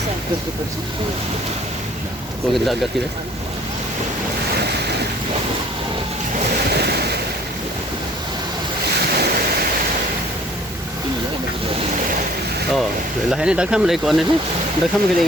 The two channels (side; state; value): both; normal; correlation 0.55